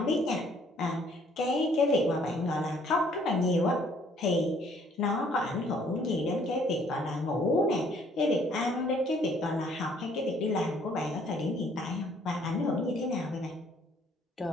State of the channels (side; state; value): both; normal; correlation 0.62